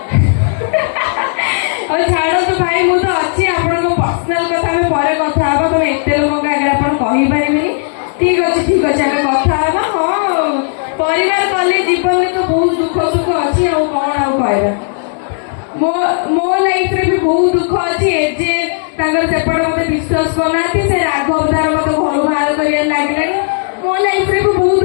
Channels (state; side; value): silent; right; 71 dB below the other